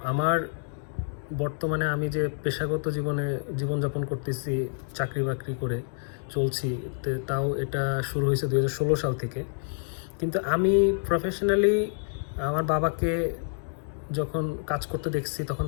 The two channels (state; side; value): silent; right; digital silence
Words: আমার বর্তমানে আমি যে পেশাগত জীবনযাপন করতেছি, চাকরি বাকরি করে চলছি, তাও এটা শুরু হয়েছে 2016 সাল থেকে। কিন্তু আমি প্রফেশনালি আমার বাবাকে যখন কাজ করতে দেখছি, তখন